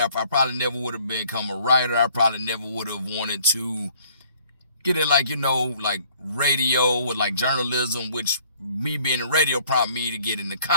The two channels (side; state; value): both; inverted; correlation -0.59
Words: probably never would have become a writer. I probably never would have wanted to get in like radio with like journalism, which me being in radio prompted me to get into